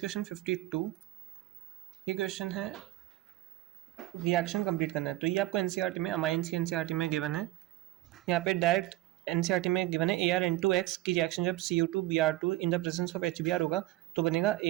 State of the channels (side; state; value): left; quieter; 16.6 dB